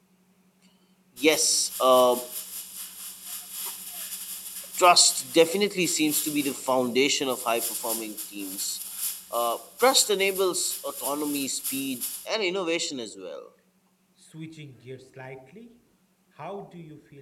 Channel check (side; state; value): both; identical; correlation 1.00